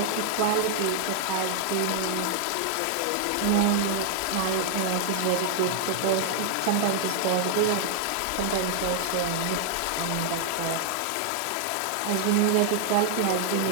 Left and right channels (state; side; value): different; both; correlation 0.00